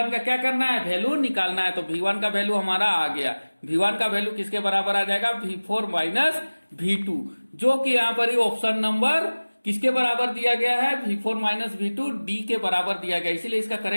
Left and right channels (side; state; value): both; inverted; correlation -1.00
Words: का क्या करना है, वैल्यू निकालना है। तो V1 का वैल्यू हमारा आ गया। V1 का वैल्यू किसके बराबर आ जाएगा V4 माइनस V2, जो कि यहाँ पर ही ऑप्शन नंबर किसके बराबर दिया गया है V4 माइनस V2 D के बराबर दिया गया, इसीलिए इसका